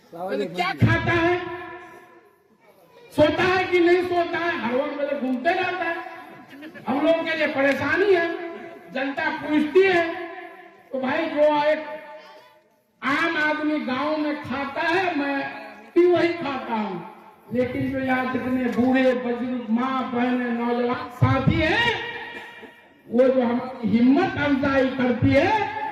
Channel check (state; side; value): identical; both; correlation 1.00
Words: क्या खाता है, सोता है कि नहीं सोता है, हर वक्त में घूमते रहता है। हम लोगों के लिए परेशानी है, जनता पूछती है। तो भाई जो एक आम आदमी गांव में खाता है, मैं भी वही खाता हूँ, लेकिन जो यहाँ जितने बूढ़े बुजुर्ग माँ बहने नौजवान साथी हैं, वो जो हमारी हिम्मत अफजाई करती है